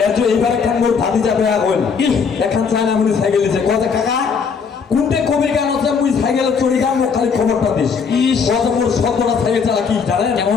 এইবার একখান মোর ভাতি যাবে এখন একখান চায়না মুনি সাইকেল দিছে কথা কাকা কোনটে কবির গান আছে মুই সাইকেলে চড়ি গান মোক খালি খবরটা দিস। কত মোর শব্দটা সাইকেল চালা কি জানেন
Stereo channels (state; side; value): quieter; right; 5.9 dB